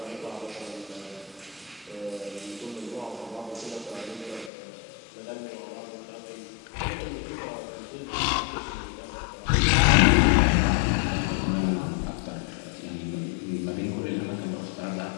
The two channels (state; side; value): drops out; right; at 4.5 s